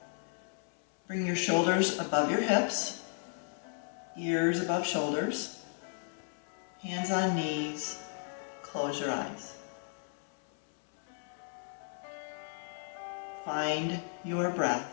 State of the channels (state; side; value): silent; right; 55 dB below the other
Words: Bring your shoulders above your hips, ears above shoulders, hands on knees, close your eyes. Find your